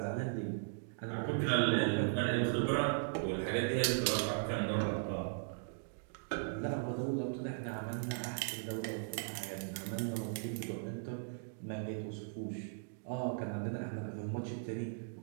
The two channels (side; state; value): left; silent; digital silence